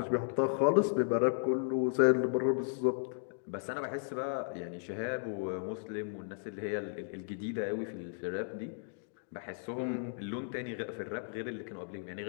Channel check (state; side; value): silent; right; digital silence